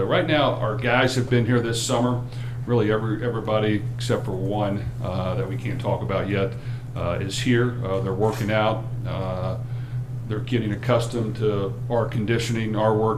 right now, our guys have been here this summer. Really, everybody except for one that we can't talk about yet is here. They're working out. They're getting accustomed to our conditioning, our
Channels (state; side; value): identical; both; correlation 1.00